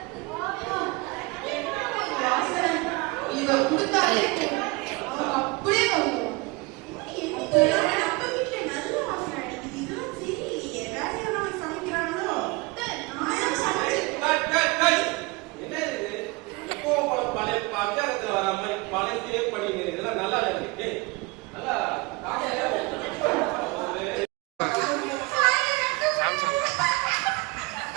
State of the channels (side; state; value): left; quieter; 25.0 dB